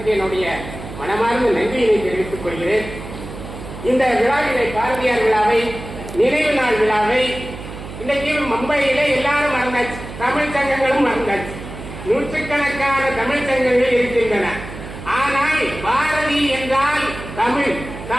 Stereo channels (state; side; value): noise; right; hum, 12 dB below the sound